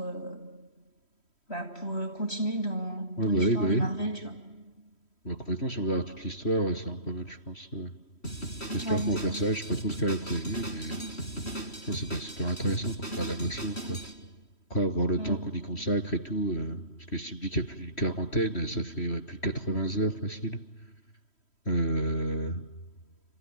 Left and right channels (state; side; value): late; right; 3.1 ms